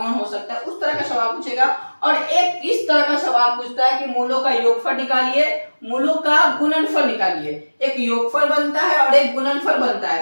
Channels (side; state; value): both; inverted; correlation -1.00